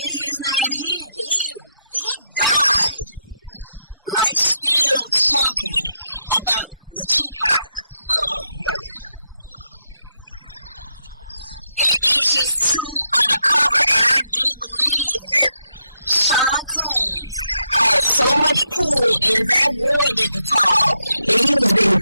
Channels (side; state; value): both; inverted; correlation -0.81